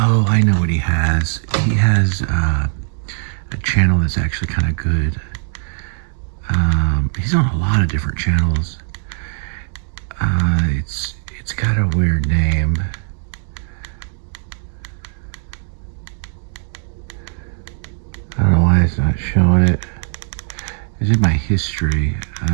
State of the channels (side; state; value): left; silent; digital silence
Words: I know what he has. He has a channel that's actually kind of good. He's on a lot of different channels. It's got a weird name. I don't know why it's not showing it. It's in my history.